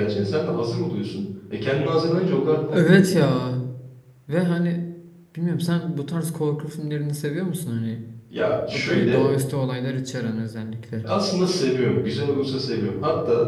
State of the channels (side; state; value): both; identical; correlation 1.00